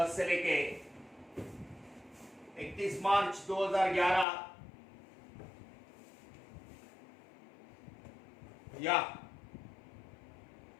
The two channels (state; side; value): drops out; right; at 4.2 s